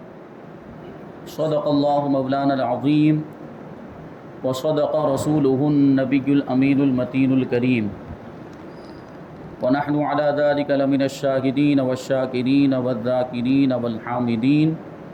اللہ مولانا العظیم، وصدق رسولہ النبی الامین المتین الکریم، ونحن على ذلك لمن الشاهدين والشاکرین والذاکرین والحامدین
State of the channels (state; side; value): identical; both; correlation 1.00